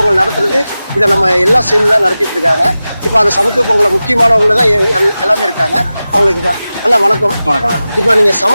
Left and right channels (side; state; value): both; inverted; correlation -0.95